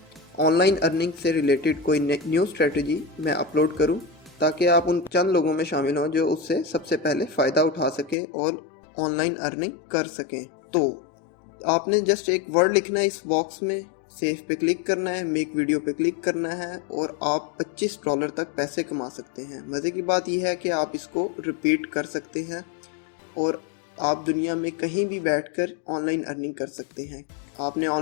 ऑनलाइन अर्निंग से रिलेटेड कोई न्यू स्ट्रेटजी मैं अपलोड करूं, ताकि आप उन चंद लोगों में शामिल हों जो उससे सबसे पहले फ़ायदा उठा सकें और ऑनलाइन अर्निंग कर सकें। तो आपने जस्ट एक वर्ड लिखना है इस बॉक्स में, सेव पे क्लिक करना है, मेक वीडियो पे क्लिक करना है और आप $25 तक पैसे कमा सकते हैं। मज़े की बात यह है कि आप इसको रिपीट कर सकते हैं और आप दुनिया में कहीं भी बैठकर ऑनलाइन अर्निंग कर सकते हैं। आपने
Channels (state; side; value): drops out; right; at 8.2 s